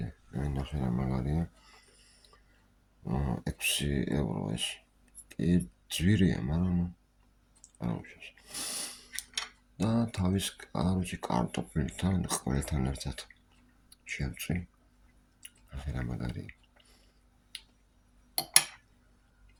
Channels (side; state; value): both; identical; correlation 1.00